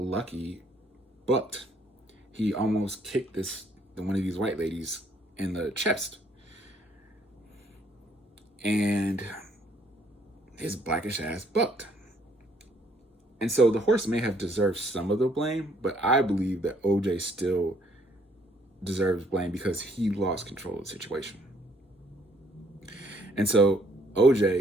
bucked. He almost kicked one of these white ladies in the chest. And his Blackish ass bucked. And so the horse may have deserved some of the blame, but I believe that OJ still deserves blame because he lost control of the situation. And so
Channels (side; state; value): both; normal; correlation 0.66